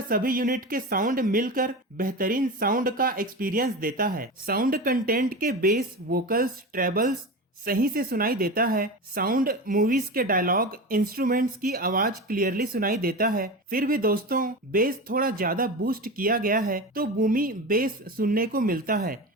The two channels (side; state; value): both; normal; correlation 0.25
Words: सभी यूनिट के साउंड मिलकर बेहतरीन साउंड का एक्सपीरियंस देता है। साउंड कंटेंट के बेस, वोकल्स, ट्रेबल्स सही से सुनाई देता है। साउंड मूवीज के डायलॉग, इंस्ट्रूमेंट्स की आवाज क्लियरली सुनाई देता है। फिर भी दोस्तों बेस थोड़ा ज्यादा बूस्ट किया गया है तो बूमी बेस सुनने को मिलता है